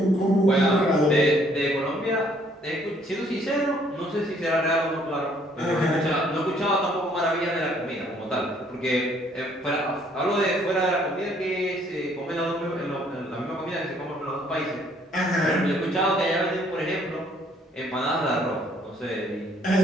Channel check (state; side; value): normal; both; correlation 0.63